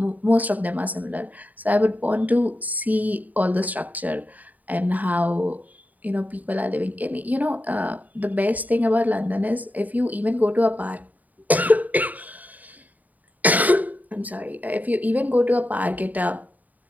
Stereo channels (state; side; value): late; left; 0.078 ms